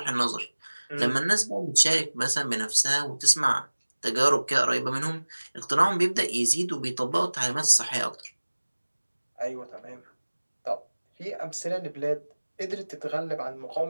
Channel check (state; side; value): inverted; both; correlation -1.00